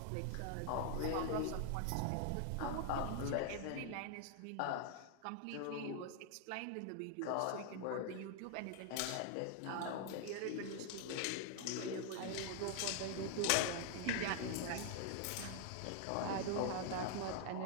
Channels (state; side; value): different; both; correlation 0.00